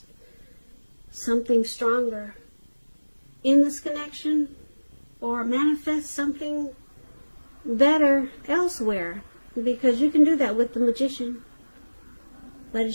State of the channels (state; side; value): inverted; both; correlation -1.00